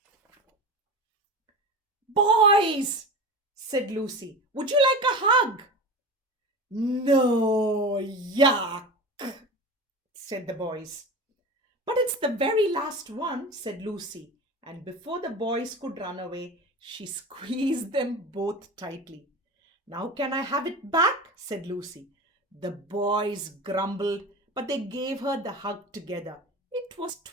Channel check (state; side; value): normal; both; correlation 0.29